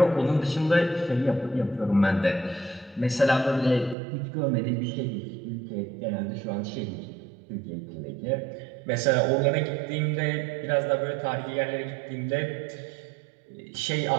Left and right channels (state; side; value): drops out; left; at 4.0 s